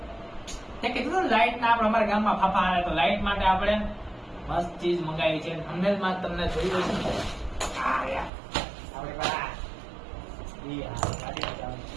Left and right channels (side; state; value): left; drops out; at 8.3 s